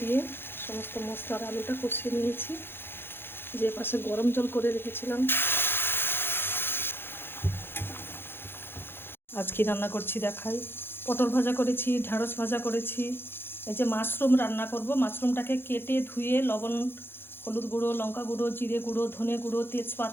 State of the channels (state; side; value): late; right; 0.11 ms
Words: দিয়ে সমস্ত মশলার আলুটা কষিয়ে নিয়েছি। যে পাশে গরম জল করে রেখেছিলাম। আজ কি রান্না করছি দেখাই। পটল ভাজা করেছি, ঢ্যাঁড়স ভাজা করেছি। এই যে মাশরুম রান্না করব। মাশরুমটাকে কেটে ধুয়ে লবণ, হলুদ গুঁড়ো, লঙ্কা গুঁড়ো, জিরে গুঁড়ো, ধনে গুঁড়ো,